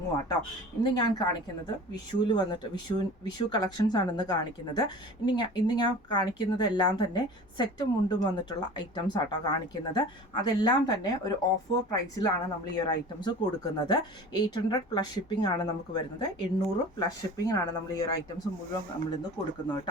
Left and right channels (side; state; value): both; normal; correlation 0.40